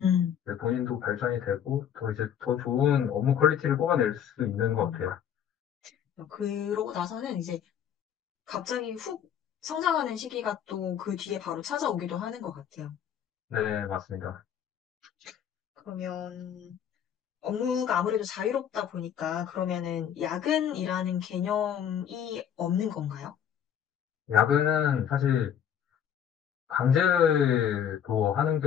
음. 이제 본인도 발전이 되고 더 이제 더 좋은 업무 퀄리티를 뽑아낼 수 있는 것 음. 같아요. 그러고 나서는 이제 갑자기 훅 성장하는 시기가 또 그 뒤에 바로 찾아오기도 하는 것 같아요. 네, 맞습니다. 그러면 업무가 아무래도 자유롭다 보니까 그러면은 야근이라는 개념이 없는 건가요? 야근은 사실 강제로 하는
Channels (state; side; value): quieter; right; 9.0 dB